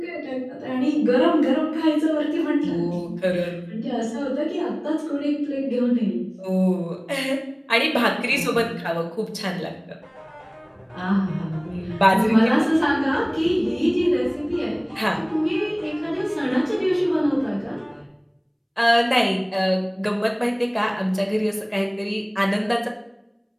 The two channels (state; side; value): identical; both; correlation 1.00